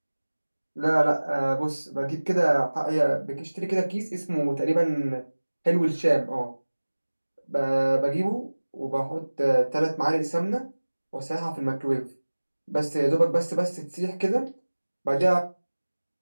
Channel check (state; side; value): inverted; both; correlation -1.00